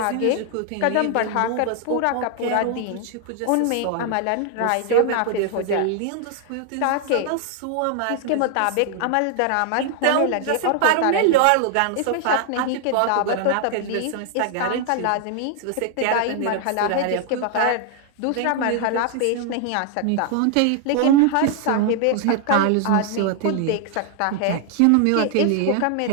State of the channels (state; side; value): different; both; correlation 0.00